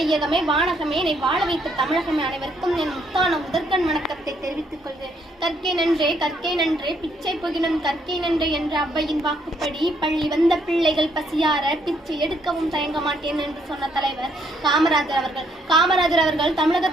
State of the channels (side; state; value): both; normal; correlation 0.71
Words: வானகமே, என்னை வாழ வைத்த தமிழகமே, அனைவருக்கும் என் முத்தான முதற்கண் வணக்கத்தை தெரிவித்துக் கொள்கிறேன். கற்கை நன்றே பிச்சை புகினும் கற்கை நன்றே என்ற அவ்வையின் வாக்குப்படி பள்ளி வந்த பிள்ளைகள் பசியார பிச்சை எடுக்கவும் தயங்க மாட்டேன் என்று சொன்ன தலைவர் காமராஜர் அவர்கள்